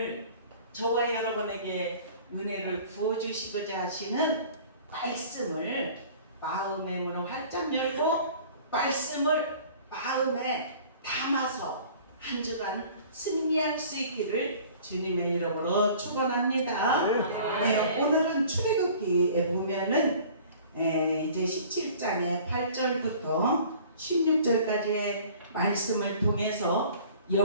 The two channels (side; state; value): both; inverted; correlation -0.48